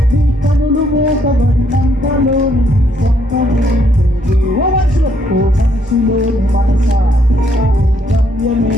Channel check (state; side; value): normal; both; correlation 0.71